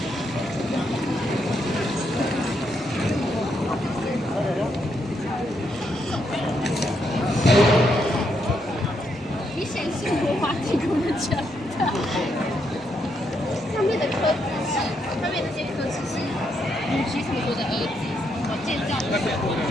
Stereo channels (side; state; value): both; normal; correlation 0.78